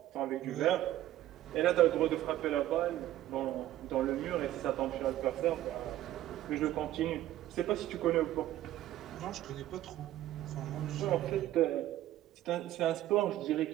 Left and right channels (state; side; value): quieter; left; 13.9 dB